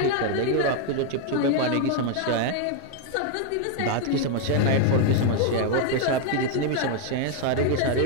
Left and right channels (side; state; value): both; different; correlation 0.01